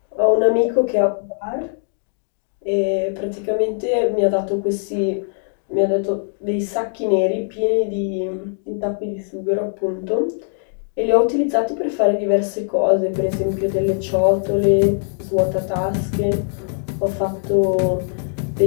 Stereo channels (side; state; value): right; silent; digital silence